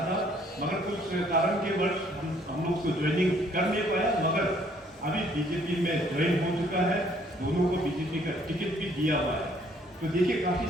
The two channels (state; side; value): normal; both; correlation 0.63